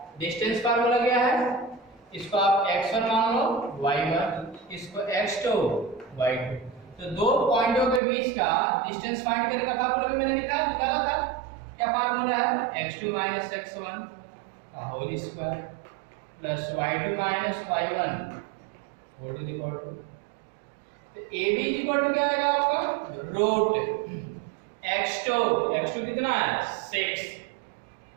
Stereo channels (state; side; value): drops out; left; at 8.0 s